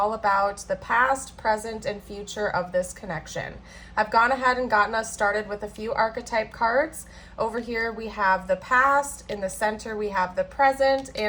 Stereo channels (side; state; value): both; identical; correlation 1.00